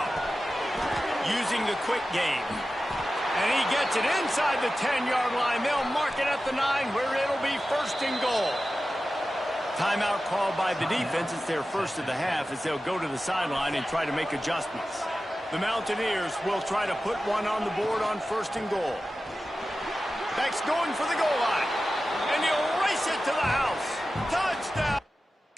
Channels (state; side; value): normal; both; correlation 0.94